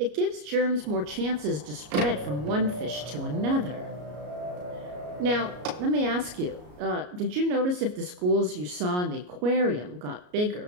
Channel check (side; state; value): left; late; 33 ms